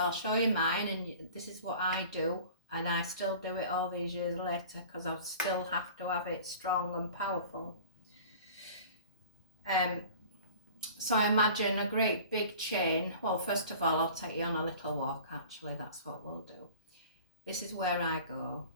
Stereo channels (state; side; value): inverted; both; correlation -0.43